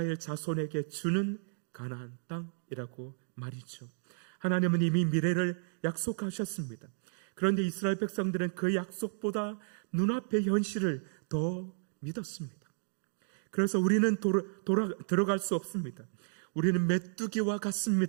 자손에게 주는 가나안 땅이라고 말이죠. 하나님은 이미 미래를 약속하셨습니다. 그런데 이스라엘 백성들은 그 약속보다 눈앞의 현실을 더 믿었습니다. 그래서 우리는 들어갈 수 없습니다. 우리는 메뚜기와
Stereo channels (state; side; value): silent; left; digital silence